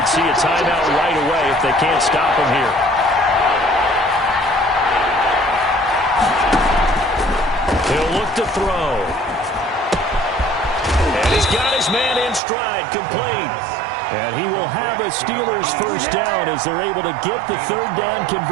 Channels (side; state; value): left; drops out; at 12.4 s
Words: see a timeout right away if they can't stop him here. He'll look to throw. And he's got his man in stride, complete. And he will have a Steelers first down as they're able to get the third down